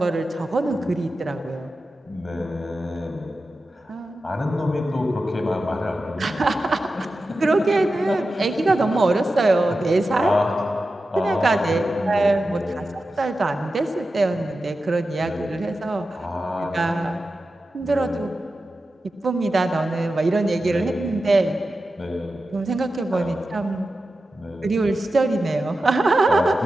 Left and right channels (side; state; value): both; normal; correlation 0.92